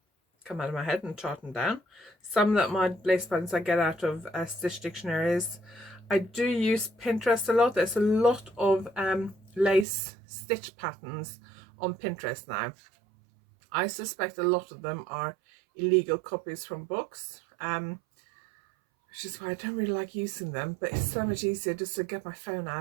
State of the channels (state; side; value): drops out; left; at 9.9 s